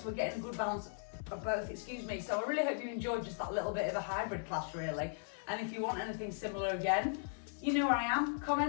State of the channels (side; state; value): right; silent; digital silence